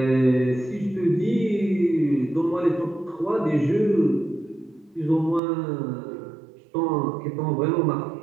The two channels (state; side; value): drops out; left; at 5.4 s